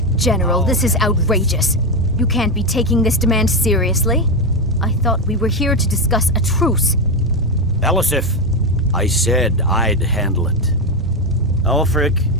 General, this is outrageous. You can't be taking this demand seriously. I thought we were here to discuss a truce. Elisif, I said I'd handle it. Ulfric,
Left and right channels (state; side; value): normal; both; correlation 0.09